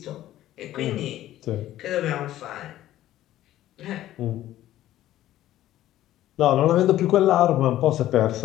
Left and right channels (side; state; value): right; quieter; 13.7 dB